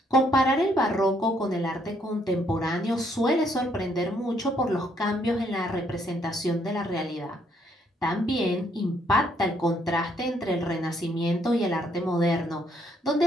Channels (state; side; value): normal; both; correlation 0.70